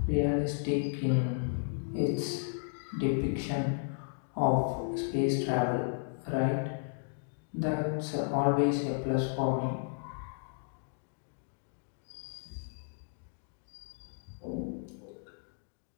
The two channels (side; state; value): right; silent; digital silence